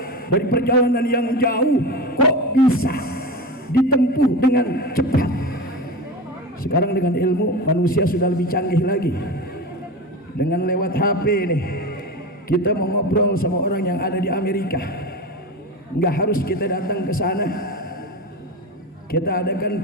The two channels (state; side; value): normal; both; correlation 0.25